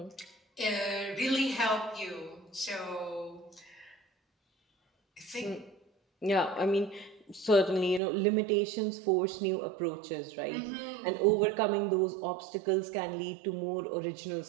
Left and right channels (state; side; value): drops out; left; at 8.0 s